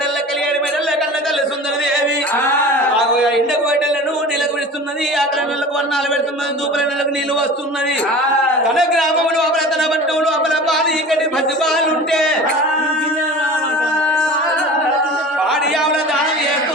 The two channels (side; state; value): both; normal; correlation 0.38